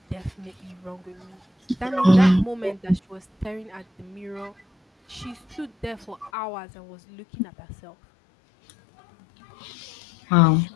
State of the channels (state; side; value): drops out; right; at 6.3 s